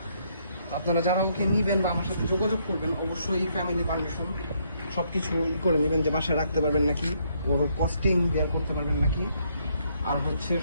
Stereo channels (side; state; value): both; inverted; correlation -0.72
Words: তো আপনারা যারা ওকে নিবেন বা আমার সাথে যোগাযোগ করবেন, অবশ্যই ফ্যামিলি পারমিশন সব কিছু করে নেবেন, যে বাসায় রাখতে পারবেন নাকি, ওর কস্টিং বের করতে পারবেন নাকি, আর হচ্ছে